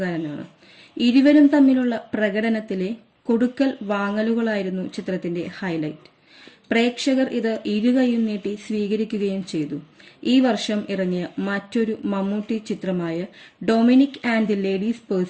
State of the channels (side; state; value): both; identical; correlation 1.00